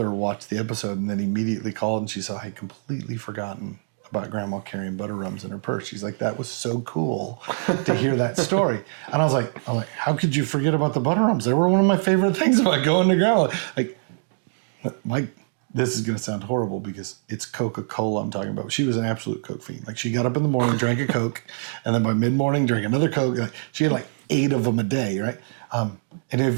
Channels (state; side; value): silent; left; digital silence